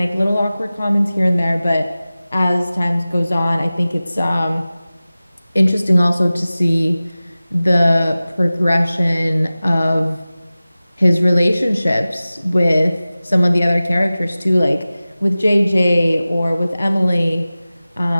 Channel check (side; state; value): both; inverted; correlation -0.97